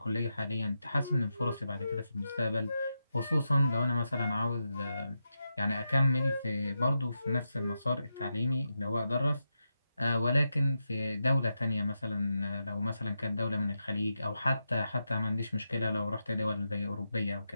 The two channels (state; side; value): inverted; both; correlation -0.87